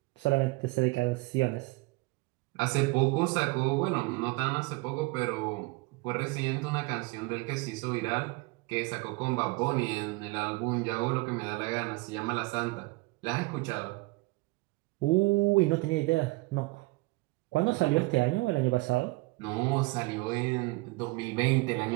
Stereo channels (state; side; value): quieter; left; 23.7 dB